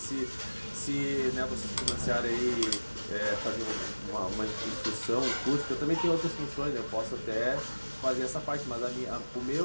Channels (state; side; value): inverted; both; correlation -1.00